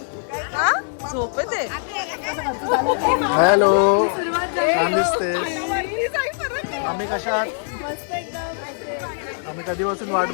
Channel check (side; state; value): right; silent; digital silence